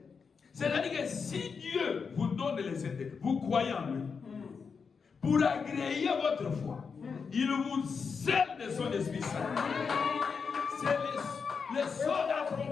C'est-à-dire que si Dieu vous donne les Saints-Esprit, vous croyez en lui, pour agréer votre foi, il vous scelle de son Esprit Saint. C'est le sceau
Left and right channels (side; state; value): right; quieter; 5.6 dB